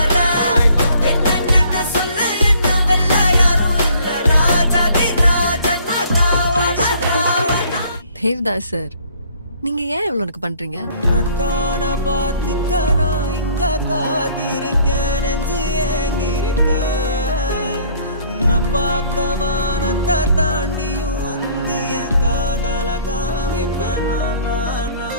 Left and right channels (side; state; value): both; inverted; correlation -0.58